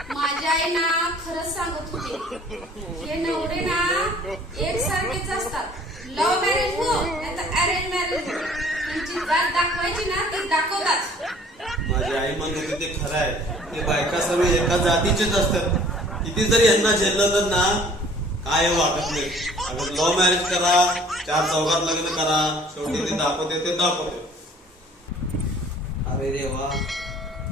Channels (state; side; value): normal; both; correlation 0.53